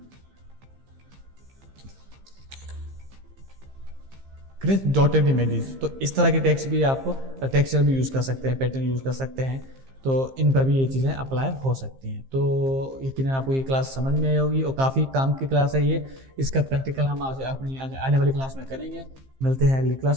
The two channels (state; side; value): late; left; 15 ms